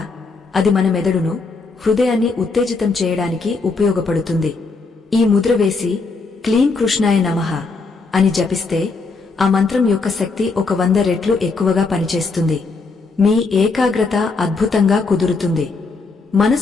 అది మన మెదడును, హృదయాన్ని ఉత్తేజితం చేయడానికి ఉపయోగపడుతుంది. ఈ ముద్ర వేసి క్లీం కృష్ణాయ నమః అని జపిస్తే ఆ మంత్రం యొక్క శక్తి 100 రెట్లు ఎక్కువగా పనిచేస్తుంది. మీ ఏకాగ్రత అద్భుతంగా కుదురుతుంది.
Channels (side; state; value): right; quieter; 4.1 dB